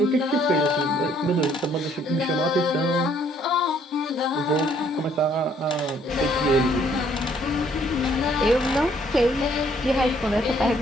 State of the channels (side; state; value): both; normal; correlation 0.64